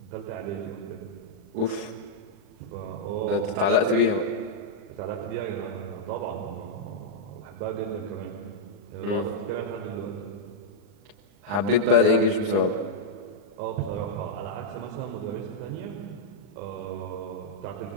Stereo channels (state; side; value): late; left; 40 ms